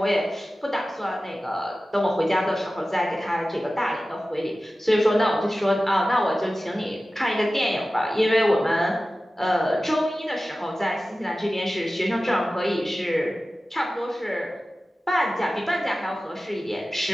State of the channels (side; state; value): both; normal; correlation 0.95